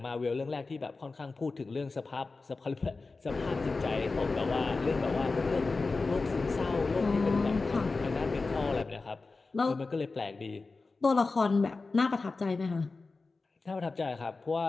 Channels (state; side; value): quieter; right; 3.8 dB